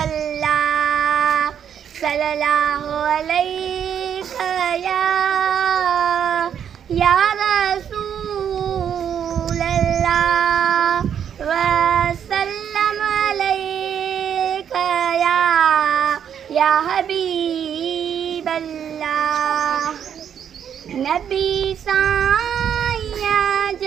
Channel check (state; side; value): quieter; left; 8.6 dB